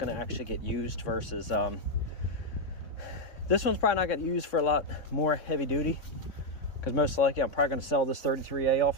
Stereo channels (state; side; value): late; right; 3.6 ms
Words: to actually get used versus this one's probably not going to get used for a lot more heavy duty. Because most likely I'm probably going to sell this 33A